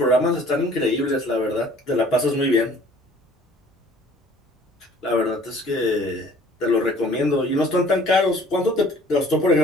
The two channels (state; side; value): normal; both; correlation 0.53